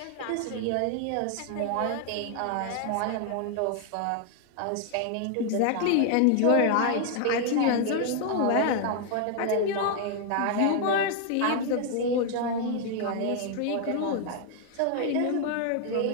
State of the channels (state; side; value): different; both; correlation 0.00